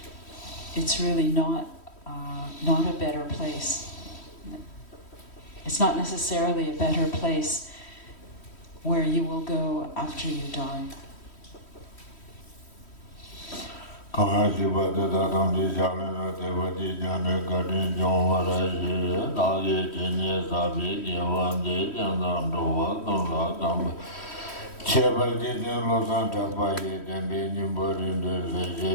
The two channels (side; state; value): right; late; 3.1 ms